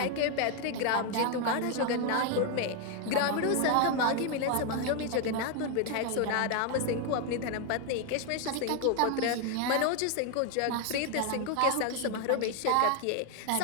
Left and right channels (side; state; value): both; different; correlation 0.01